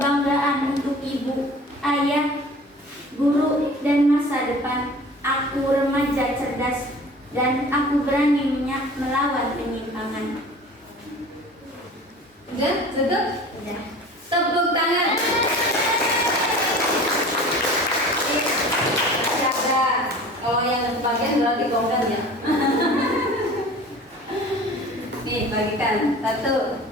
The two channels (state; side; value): normal; both; correlation 0.42